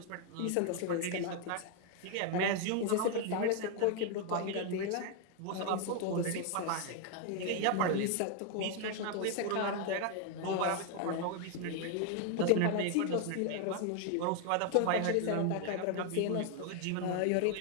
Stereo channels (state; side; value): different; both; correlation 0.00